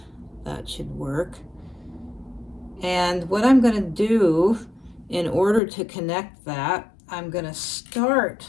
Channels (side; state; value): right; drops out; at 5.6 s